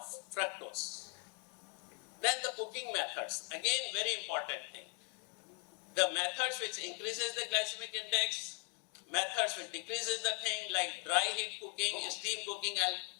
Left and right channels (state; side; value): quieter; right; 35.0 dB